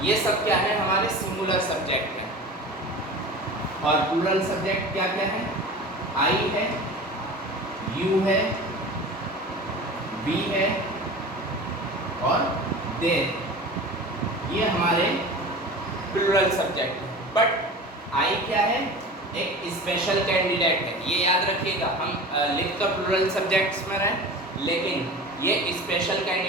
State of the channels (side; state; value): both; normal; correlation 0.35